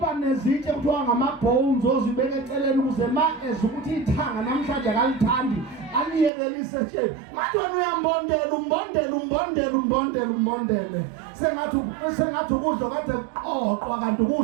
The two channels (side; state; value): left; drops out; at 6.3 s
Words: nezitshe kuthiwa ngama-bones ozibeka eceleni ukuze ma ukuthi ithanga namhlanje akalithandi aliyekelise nje manje wena umbondele sengathi ukudla kade kuqoqwa kanti